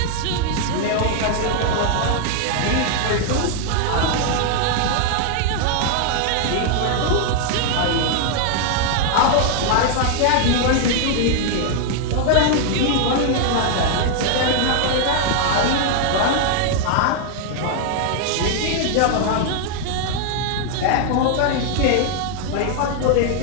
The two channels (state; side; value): different; both; correlation 0.00